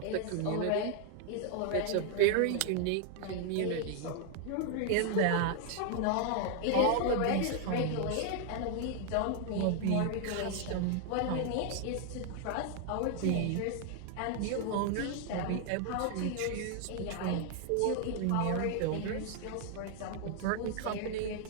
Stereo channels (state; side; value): different; both; correlation 0.00